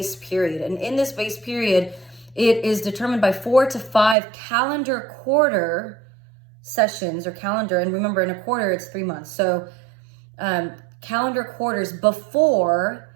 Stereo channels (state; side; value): drops out; left; at 4.2 s